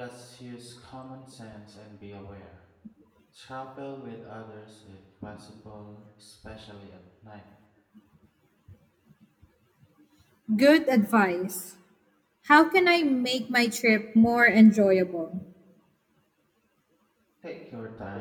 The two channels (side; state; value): both; identical; correlation 1.00